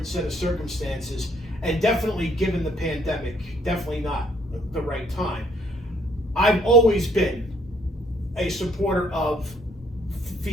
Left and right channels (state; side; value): normal; both; correlation 0.65